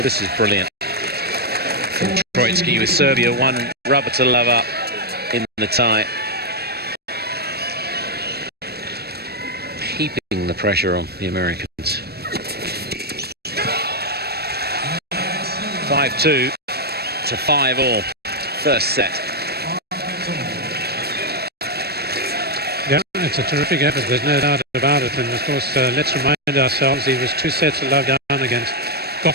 this is brilliant from Troitsky with Serbia, one rubber to love up in the tie. the pressure on the Americans. 5-2 to 5-all. First set. Yeah, it's a terrific effort, there's no doubt about it. And of course, let's remind ourselves he was 2 sets to love down against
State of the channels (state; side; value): late; left; 0.47 ms